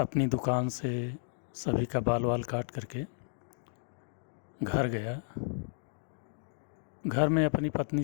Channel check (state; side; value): silent; right; digital silence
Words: दुकान से सभी का बाल वाल काट करके घर गया। घर में अपनी पत्नी